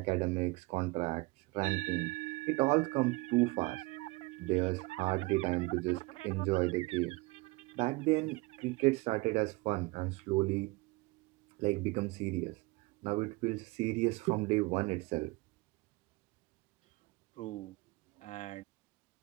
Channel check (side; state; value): left; quieter; 23.8 dB